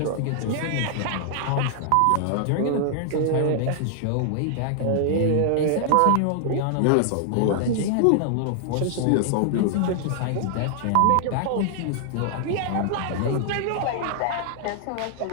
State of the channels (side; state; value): both; different; correlation 0.00